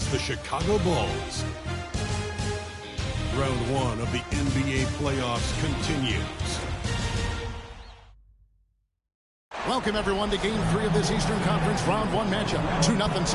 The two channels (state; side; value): identical; both; correlation 1.00